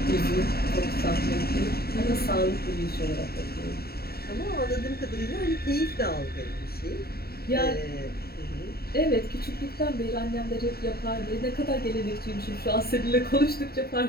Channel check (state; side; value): late; right; 0.45 ms